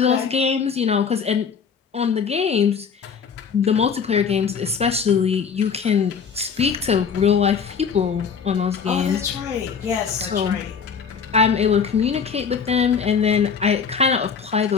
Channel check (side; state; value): right; quieter; 6.3 dB